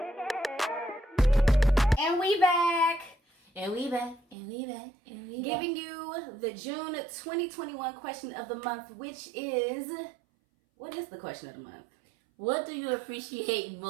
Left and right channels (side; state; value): left; drops out; at 4.4 s